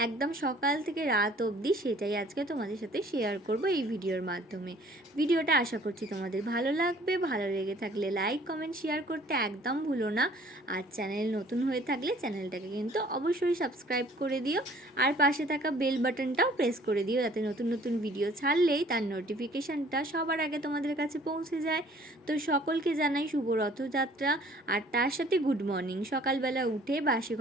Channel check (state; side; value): normal; both; correlation 0.54